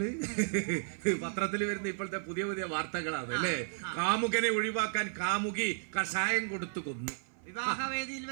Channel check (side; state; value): left; silent; 55 dB below the other